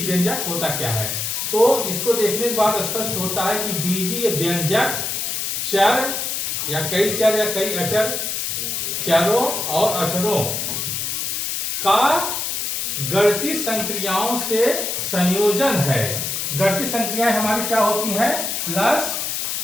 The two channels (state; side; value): noise; left; hiss, 2 dB below the sound